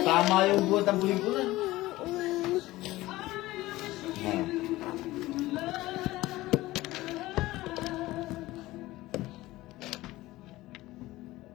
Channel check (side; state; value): right; quieter; 17.9 dB